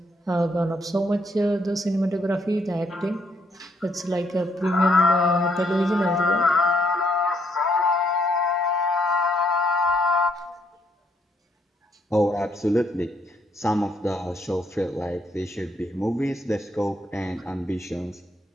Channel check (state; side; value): normal; both; correlation 0.72